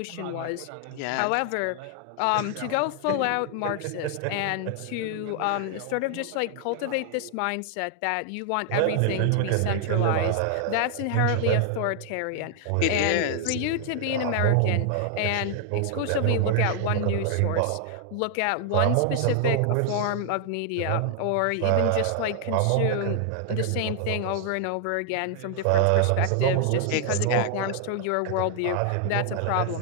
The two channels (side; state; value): both; different; correlation 0.00